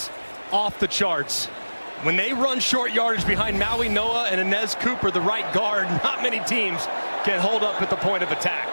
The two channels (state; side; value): inverted; both; correlation -1.00